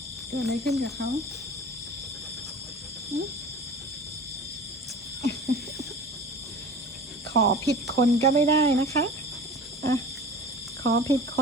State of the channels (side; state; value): both; normal; correlation 0.38